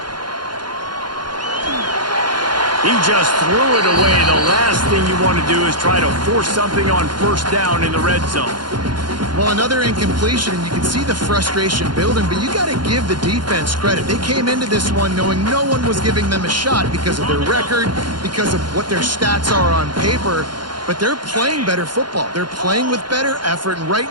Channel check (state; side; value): late; left; 0.71 ms